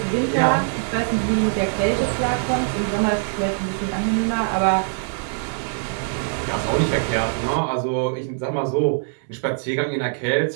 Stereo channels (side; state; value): left; silent; 64 dB below the other